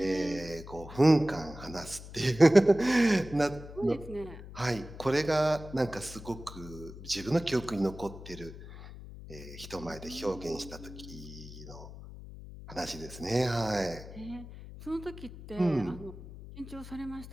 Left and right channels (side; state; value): left; noise; hum, 14 dB below the sound